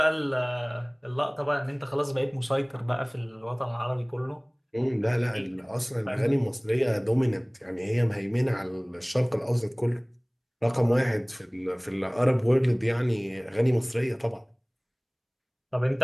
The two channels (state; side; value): identical; both; correlation 1.00